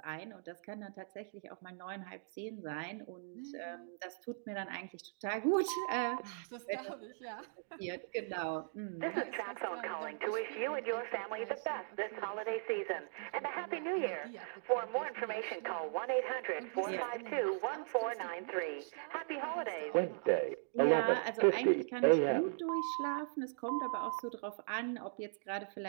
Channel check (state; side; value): silent; left; digital silence